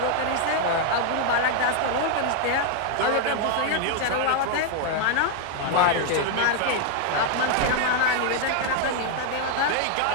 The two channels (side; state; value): both; different; correlation 0.00